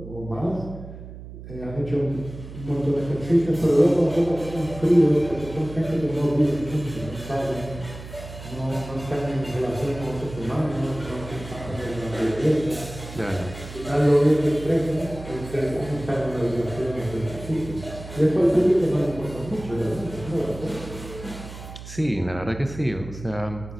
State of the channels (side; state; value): right; noise; hum, 13 dB below the sound